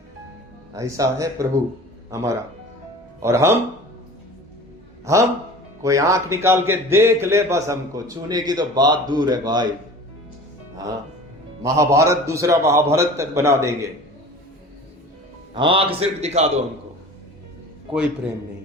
ऐसा है प्रभु हमारा। और हम कोई आंख निकाल के देख ले, बस हमको छूने की तो बात दूर है भाई। हाँ, महाभारत दूसरा महाभारत तक बना देंगे, आंख सिर्फ दिखा दो हमको, कोई प्रेम नहीं।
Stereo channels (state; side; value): normal; both; correlation 0.40